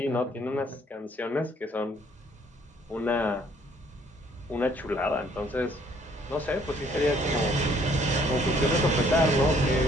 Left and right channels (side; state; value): both; normal; correlation 0.62